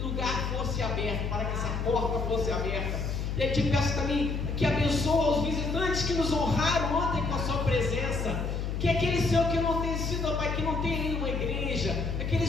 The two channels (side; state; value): left; noise; hum, 2 dB below the sound